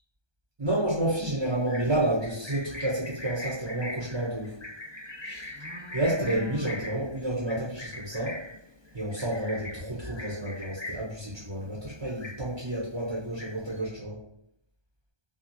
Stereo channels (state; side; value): late; left; 1.2 ms